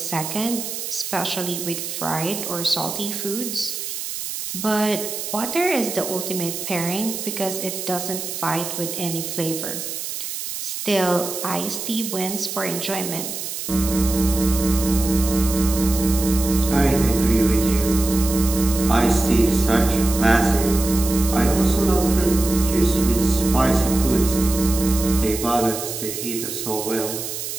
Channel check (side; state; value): right; noise; hiss, 6 dB below the sound